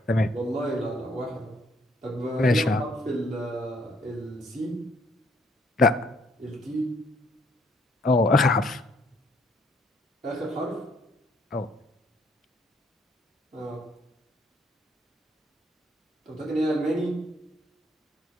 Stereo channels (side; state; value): both; normal; correlation 0.67